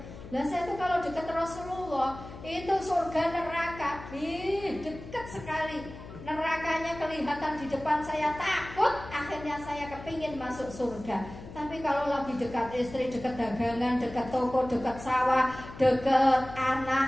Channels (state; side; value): noise; left; hum, 14 dB below the sound